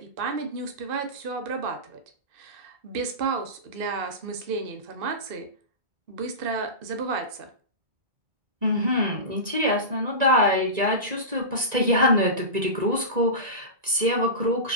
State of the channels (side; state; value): left; late; 1.9 ms